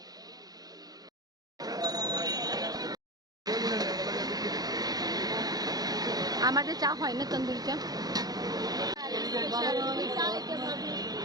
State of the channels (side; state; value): left; late; 0.19 ms